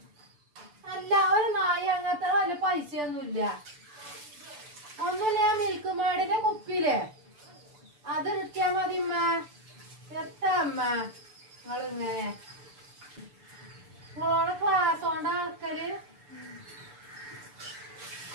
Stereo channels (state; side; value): late; left; 6.8 ms